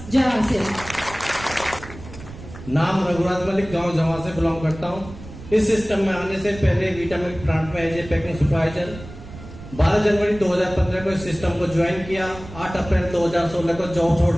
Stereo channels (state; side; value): noise; right; rumble, 15 dB below the sound